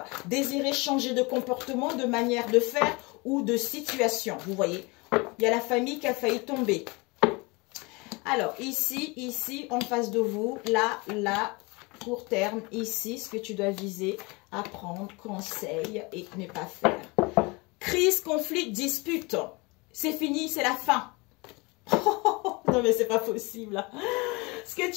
désirer changer de comportement, de manière de faire ou de situation. Vous voyez, il y a la famille qui a failli tomber. Alors, ici, en face de vous, là, court terme, ici, ce que tu dois viser, apprendre, conseil et ne pas faire. Crise, conflit, dispute. C'est fini, c'est la fin. Non, mais c'est pas possible. Ce que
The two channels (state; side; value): quieter; right; 26.4 dB